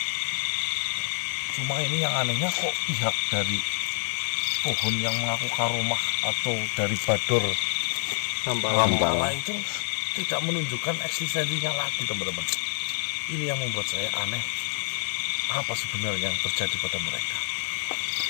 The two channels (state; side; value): silent; right; 59 dB below the other